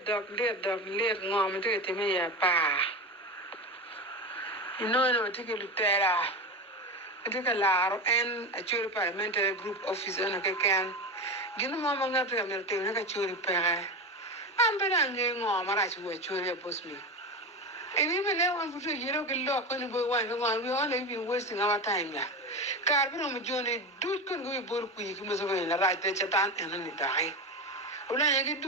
ngom to get me ya pa. No take lutera. Take a laro and a churi parliamentary group office on a can. Gino mama ngata ya merte na ka churi pere. Ambera nge ngom ara churi churi bos mi. And even now, one for you don't get locked when you go one. We only been wasting our time. Carbon on journey, do couldn't go both quick, must have been a right there, Chatan, and then it die. Well, I get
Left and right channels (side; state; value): both; normal; correlation 0.21